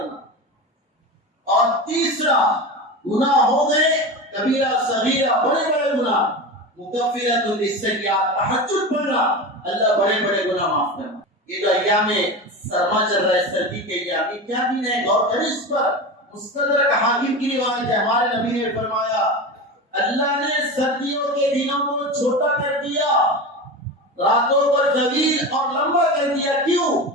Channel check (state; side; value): normal; both; correlation 0.25